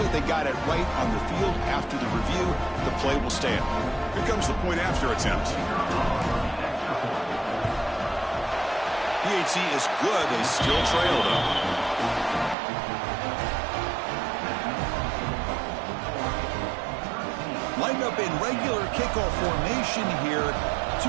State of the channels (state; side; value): drops out; left; at 12.6 s